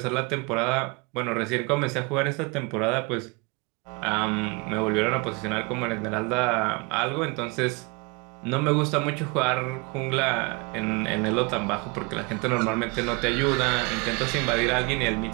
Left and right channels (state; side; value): quieter; left; 28.6 dB